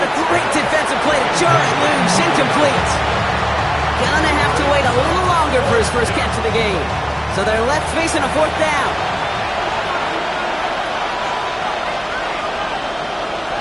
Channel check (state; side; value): identical; both; correlation 1.00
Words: a great defensive play to jar it loose. Incomplete. Gonna have to wait a little longer for his first catch of the game. So they're left facing a fourth down.